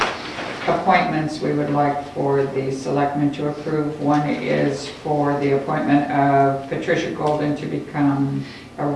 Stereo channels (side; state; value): both; identical; correlation 1.00